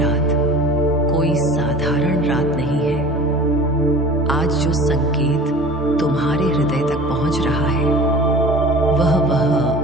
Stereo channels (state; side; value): normal; both; correlation 0.40